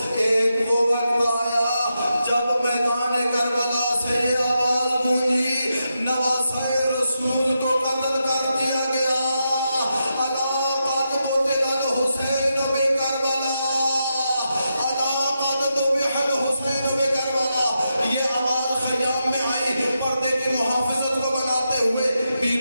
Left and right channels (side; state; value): both; inverted; correlation -0.86